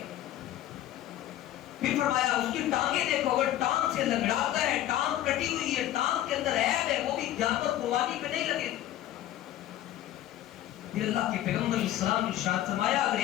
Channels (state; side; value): quieter; right; 13.2 dB